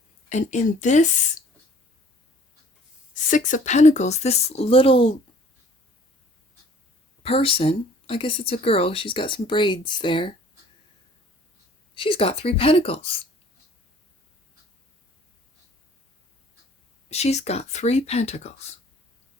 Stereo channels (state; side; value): normal; both; correlation 0.54